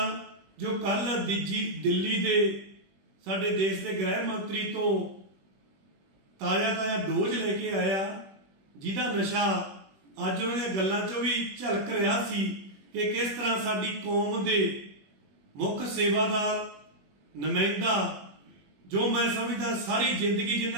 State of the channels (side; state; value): left; late; 21 ms